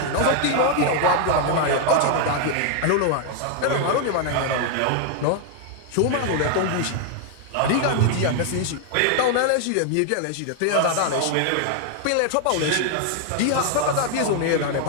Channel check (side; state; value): both; different; correlation 0.00